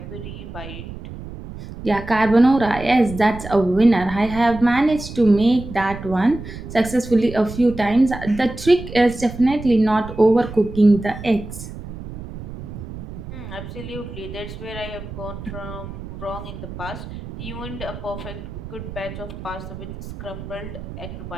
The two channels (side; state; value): right; noise; rumble, 11 dB below the sound